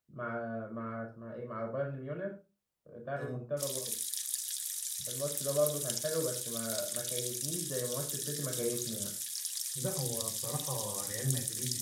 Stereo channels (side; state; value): both; identical; correlation 1.00